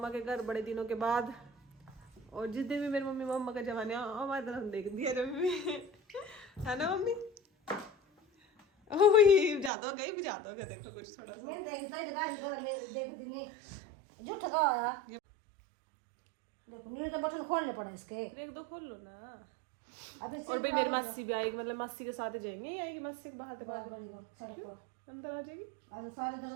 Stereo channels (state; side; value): drops out; left; at 9.7 s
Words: के घर बड़े दिनों के बाद। और जिस दिन भी मेरी मम्मी मम्मा का जमाने हमारी तरफ देख दिया जब भी है ना मम्मी। ओह ज्यादा हो गया देखो कुछ थोड़ा सा तो बटन खोलने पड़े इसके। देख दो, खोल लो ना। और भाई मेरी मासी भी आएगी, मतलब मासी के साथ ही जाएंगे। ये आएगी मासी के बाहर अंदर आ जाएगी। सारे तो